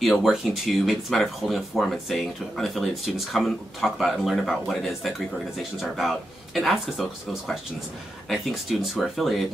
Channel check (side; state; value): both; normal; correlation 0.87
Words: to, maybe it's a matter of holding a forum and saying to unaffiliated students, come and talk about and learn about what it is that Greek organizations are about, and ask us those questions. And I think students who are affiliated